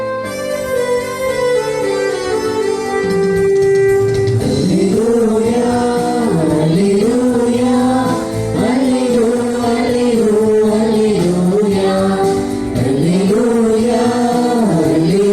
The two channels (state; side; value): identical; both; correlation 1.00